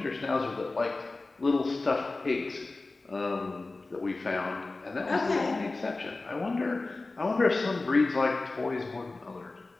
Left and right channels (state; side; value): quieter; right; 3.3 dB